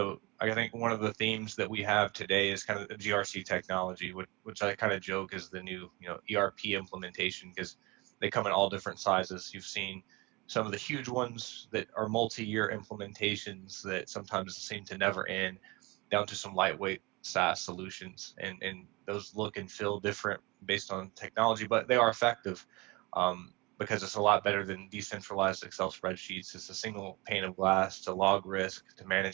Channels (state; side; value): quieter; left; 24.4 dB